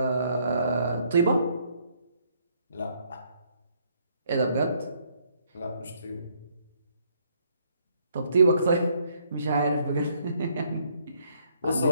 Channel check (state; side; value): inverted; both; correlation -0.68